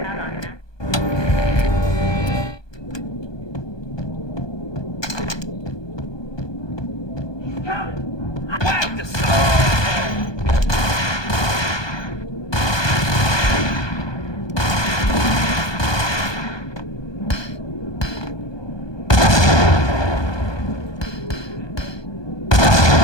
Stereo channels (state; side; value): late; right; 1.2 ms